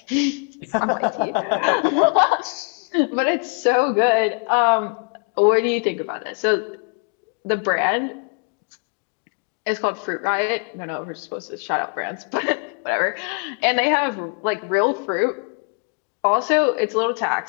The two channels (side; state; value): right; quieter; 38.3 dB